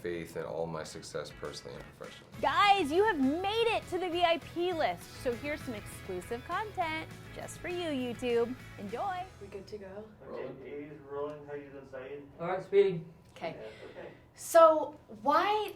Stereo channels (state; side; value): identical; both; correlation 1.00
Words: in all my success personally and professionally. Guys, you have made it to the VIP list. So here's some exclusive content just for you, YouTube. Enjoy. We good to go? Okay, A's rolling, how you decide? All right, speeding. Okay. Yeah, okay. So why